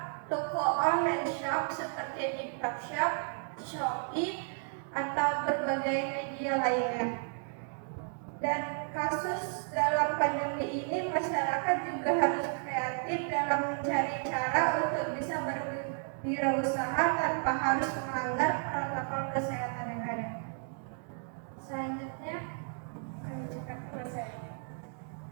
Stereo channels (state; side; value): silent; left; 56 dB below the other